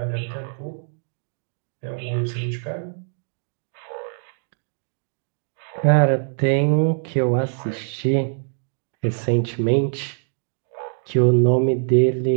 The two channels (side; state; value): left; silent; 58 dB below the other